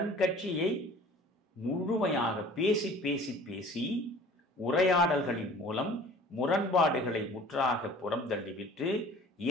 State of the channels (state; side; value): normal; both; correlation 0.47